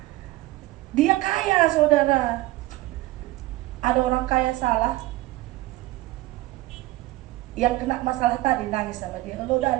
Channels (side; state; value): left; quieter; 18.4 dB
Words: Dia kaya saudara. Ada orang kaya salah, yang kena masalah tadi nangis sama dia. Lo